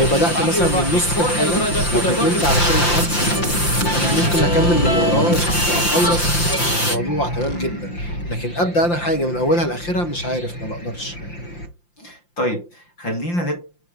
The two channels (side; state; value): right; late; 5.8 ms